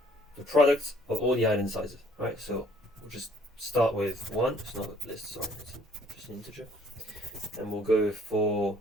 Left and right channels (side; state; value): both; normal; correlation 0.59